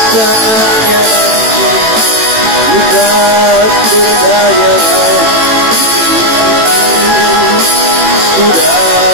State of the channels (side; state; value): left; late; 18 ms